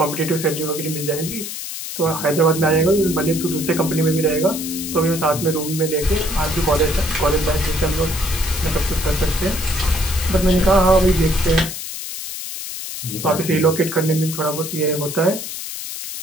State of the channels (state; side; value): noise; left; hiss, 7 dB below the sound